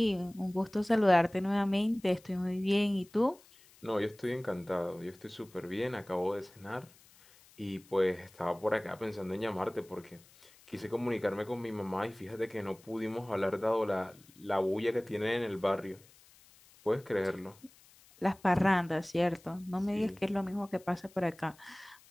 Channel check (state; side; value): noise; left; hiss, 26 dB below the sound